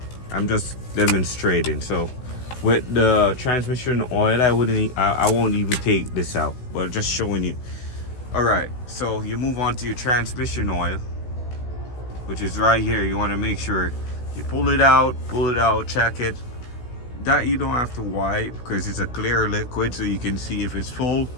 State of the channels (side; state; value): right; late; 16 ms